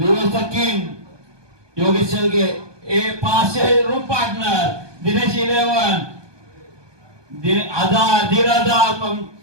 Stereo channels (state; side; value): late; left; 1.2 ms